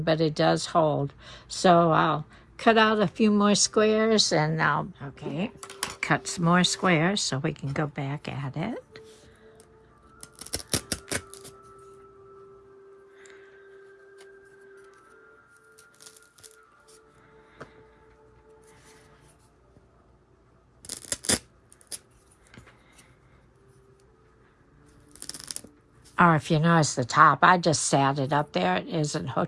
but it does hold. So I'll cut out a few more squares and I'll, okay, cut some more squares so we can go back at it. Or if you notice the top, I just sat it up there. It isn't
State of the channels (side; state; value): both; identical; correlation 1.00